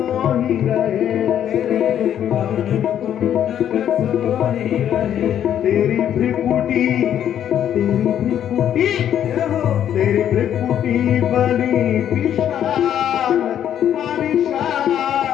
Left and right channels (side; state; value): right; quieter; 10.1 dB